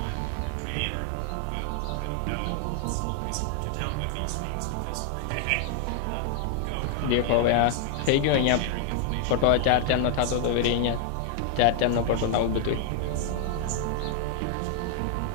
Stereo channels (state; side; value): different; both; correlation 0.00